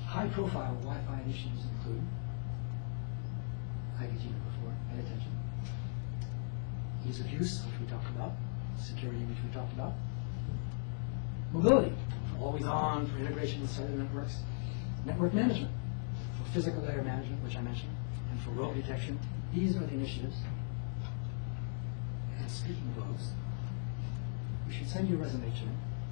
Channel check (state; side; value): silent; right; digital silence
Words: High-profile Wi-Fi initiatives include IVT number 4, pay attention. Ease of use, which we talked about. Security, which we talked about. Mobility, for always on, for integration with cellular networks. Network management, for physical layer management, which I mentioned, and for rogue detection. These are the initiatives. And speaking of rogues, we should send you a resume to